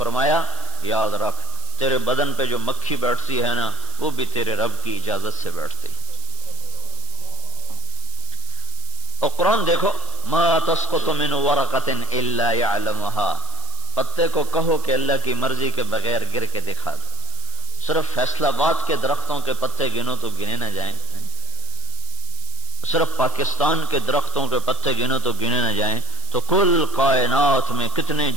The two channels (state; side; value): noise; right; hiss, 13 dB below the sound